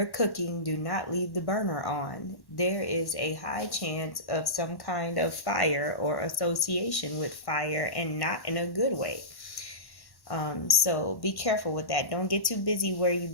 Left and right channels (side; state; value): right; late; 1.1 ms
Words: cooking, do not leave the burner on. There is a high chance of some kind of fire or association with fire, and not in a good way. So be careful with that. Don't get too busy where you